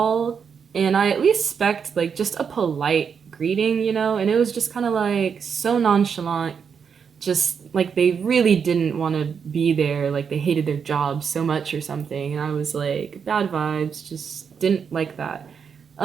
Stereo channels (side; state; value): left; quieter; 6.6 dB